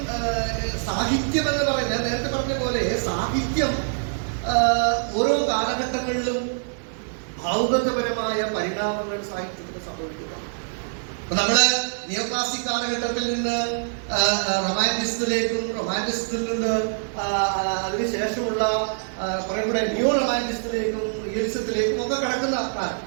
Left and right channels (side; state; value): left; silent; 62 dB below the other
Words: സാഹിത്യം എന്ന് പറയുന്നത്, ഞാൻ നേരത്തെ പറഞ്ഞ പോലെ സാഹിത്യം ഓരോ കാലഘട്ടങ്ങളിലും ഭാവുകത്വപരമായ പരിണാമങ്ങൾ സാഹിത്യത്തിൽ സംഭവിക്കുക. അപ്പൊ നമ്മള് നിയോ ക്ലാസിക് കാലഘട്ടത്തിൽ നിന്ന് റൊമാൻറ്റിസത്തിൽ നിന്ന് അതിനുശേഷമുള്ള കുറെ കൂടെ ന്യൂ റൊമാൻറ്റിസത്തിലേക്കും റിയലിസത്തിലേക്കും ഒക്കെ കടക്കുന്ന കാലം.